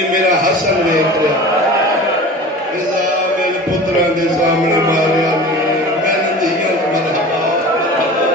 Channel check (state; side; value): normal; both; correlation 0.37